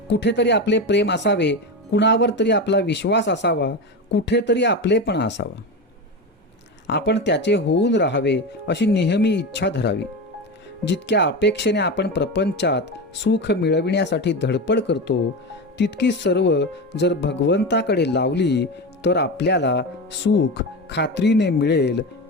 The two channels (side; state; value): both; normal; correlation 0.20